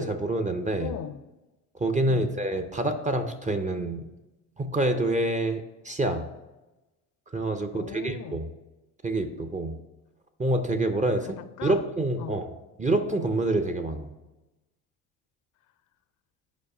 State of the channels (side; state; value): both; normal; correlation 0.51